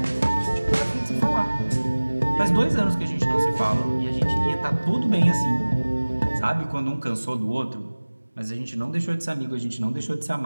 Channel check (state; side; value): inverted; both; correlation -1.00